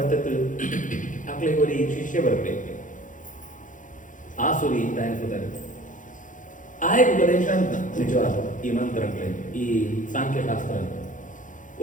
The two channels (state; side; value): late; right; 0.37 ms